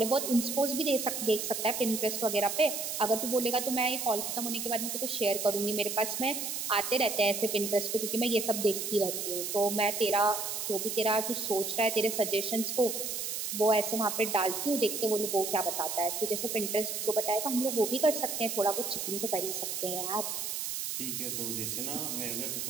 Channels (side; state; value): right; noise; hiss, 3 dB below the sound